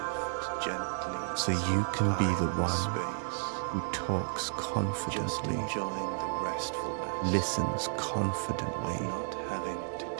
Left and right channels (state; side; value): silent; left; digital silence